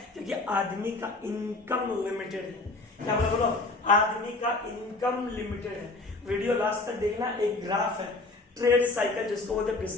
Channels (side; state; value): right; quieter; 3.2 dB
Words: क्योंकि आदमी का इनकम लिमिटेड है। क्या बोलो, आदमी का इनकम लिमिटेड है। वीडियो लास्ट तक देखना, एक ग्राफ है ट्रेड साइकिल जिसको बोलते हैं